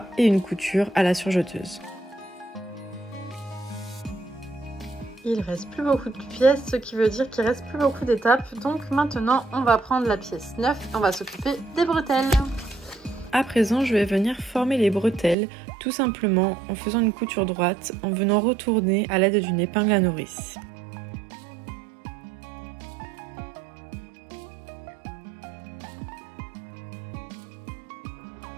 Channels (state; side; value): drops out; left; at 15.4 s